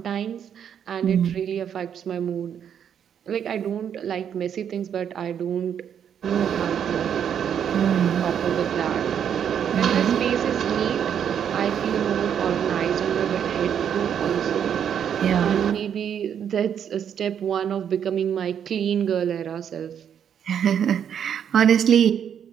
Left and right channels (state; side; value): quieter; left; 8.6 dB